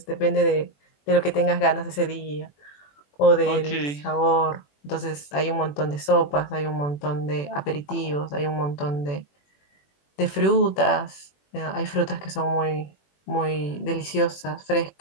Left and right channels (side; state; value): right; late; 21 ms